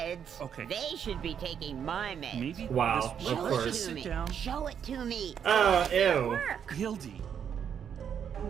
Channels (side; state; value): left; quieter; 8.1 dB